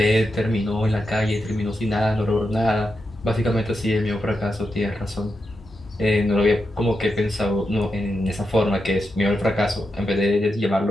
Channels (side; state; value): both; normal; correlation 0.87